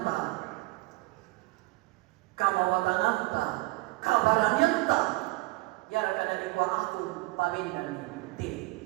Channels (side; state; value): left; quieter; 22.5 dB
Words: kamawatananta, kabaranyanta, ya kada di kuah aku pawindan ti